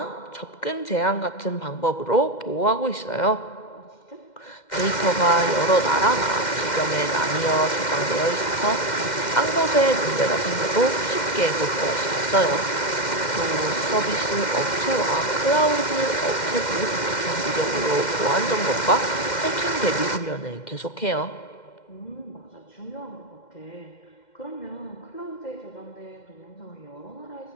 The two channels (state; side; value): late; right; 2.1 ms